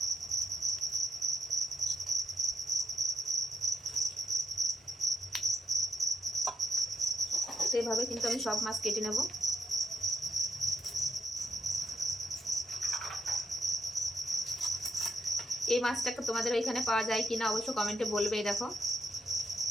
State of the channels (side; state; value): both; normal; correlation 0.81